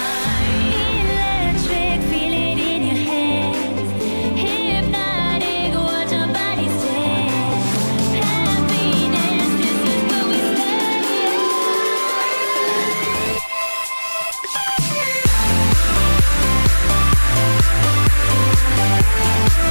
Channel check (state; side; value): inverted; both; correlation -1.00